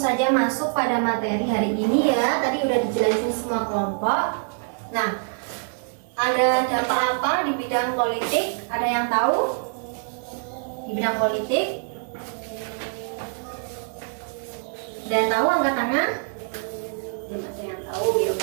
masuk pada materi hari ini ya. Tadi udah dijelasin semua kelompok. Nah, ada dampak apa di bidang politik? Ada yang tahu? Di bidang politik? Ada yang tahu angkat tangan? Belum ada yang tahu, ya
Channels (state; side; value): silent; left; 62 dB below the other